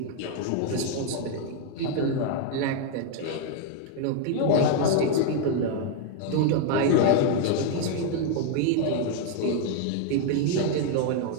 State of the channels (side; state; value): both; different; correlation 0.00